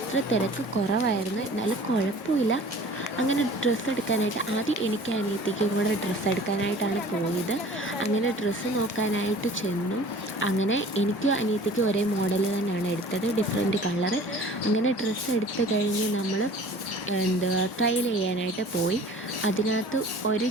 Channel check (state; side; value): normal; both; correlation 0.46